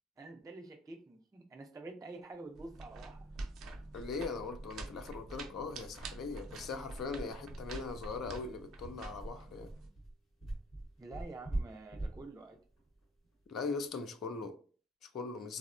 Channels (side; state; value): both; normal; correlation 0.55